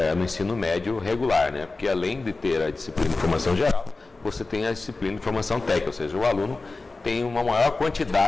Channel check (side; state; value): right; quieter; 3.5 dB